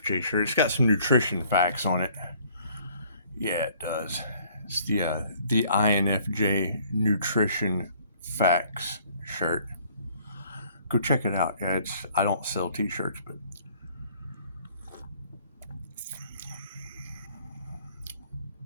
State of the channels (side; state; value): both; inverted; correlation -0.59